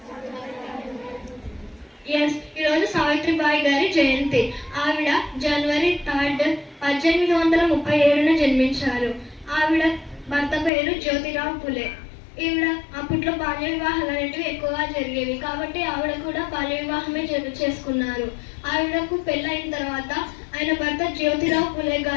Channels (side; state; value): right; drops out; at 10.7 s